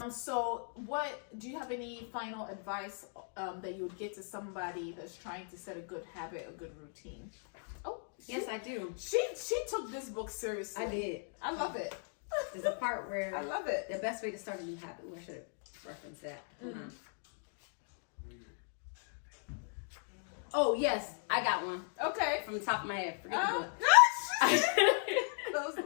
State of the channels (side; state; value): right; silent; 53 dB below the other